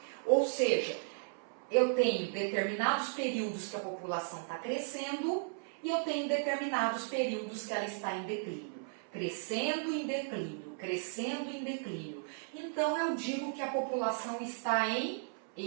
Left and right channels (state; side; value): silent; left; 54 dB below the other